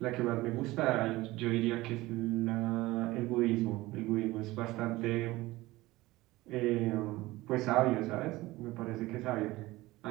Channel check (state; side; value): quieter; left; 19.1 dB